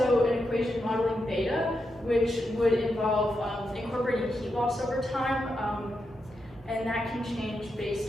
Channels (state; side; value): normal; both; correlation 0.85